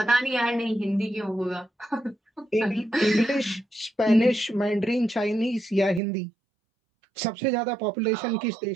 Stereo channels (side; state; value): left; drops out; at 6.0 s